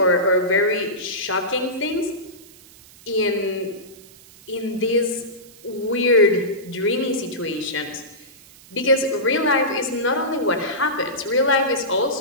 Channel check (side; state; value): right; noise; hiss, 23 dB below the sound